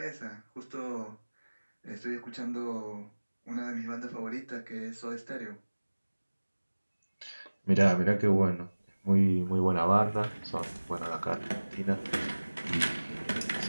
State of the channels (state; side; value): inverted; both; correlation -1.00